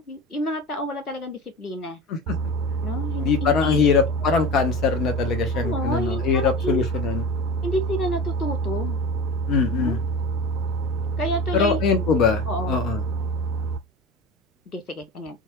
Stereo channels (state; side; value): normal; both; correlation 0.31